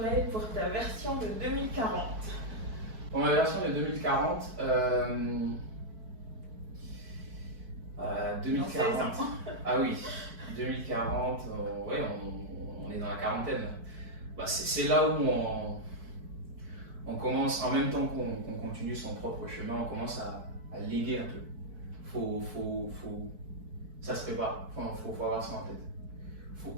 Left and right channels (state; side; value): late; left; 4.6 ms